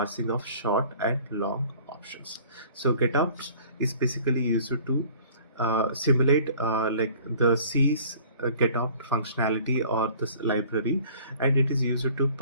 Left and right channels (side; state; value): both; inverted; correlation -0.50